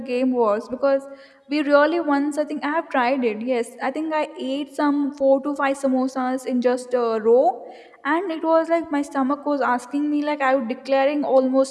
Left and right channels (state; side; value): identical; both; correlation 1.00